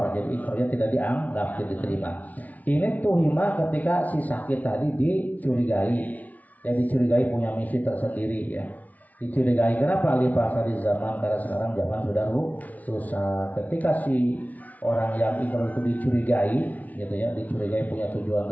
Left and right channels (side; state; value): right; late; 0.073 ms